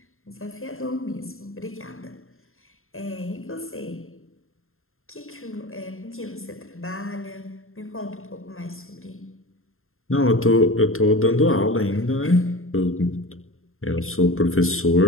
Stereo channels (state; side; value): late; right; 0.61 ms